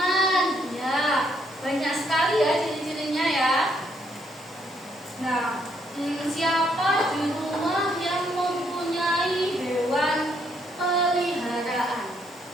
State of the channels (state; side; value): normal; both; correlation 0.72